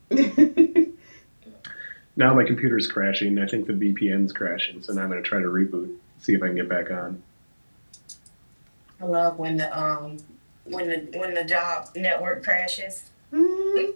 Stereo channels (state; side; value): inverted; both; correlation -1.00